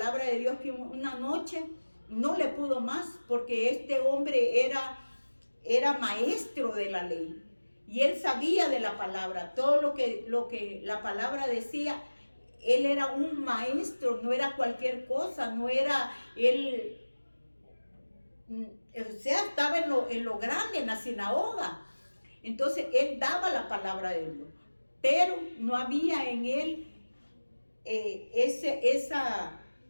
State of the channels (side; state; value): both; inverted; correlation -1.00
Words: de Dios, que una noche no le pudo más, porque este hombre era maestro de la ley y él sabía de la palabra, todo lo que la palabra decía. Él era un maestro, no era cualquier cosa, no era él, o sea, estaba en lo grande, en la sinagoga. Entonces él daba la palabra de Dios, pero no había en él